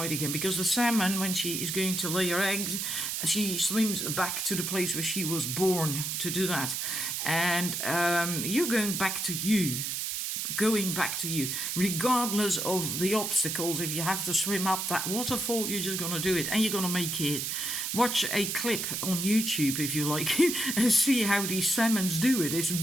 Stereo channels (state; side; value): noise; right; hiss, 2 dB below the sound